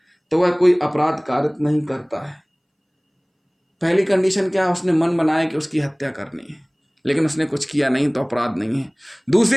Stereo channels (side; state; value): both; identical; correlation 1.00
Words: तो वह कोई अपराध कारित नहीं करता है। पहली कंडीशन क्या है? उसने मन बनाया कि उसकी हत्या करनी है, लेकिन उसने कुछ किया नहीं तो अपराध नहीं है।